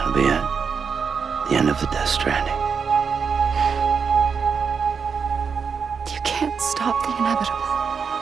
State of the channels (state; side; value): quieter; left; 6.1 dB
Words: be it. The end of the Death Stranding. can't stop the inevitable.